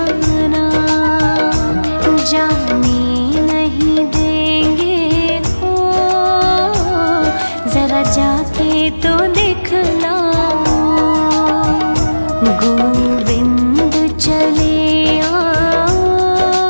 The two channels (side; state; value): both; inverted; correlation -1.00